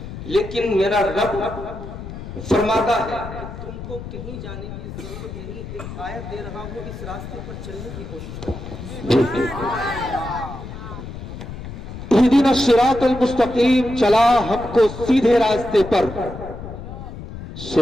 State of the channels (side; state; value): left; noise; rumble, 10 dB below the sound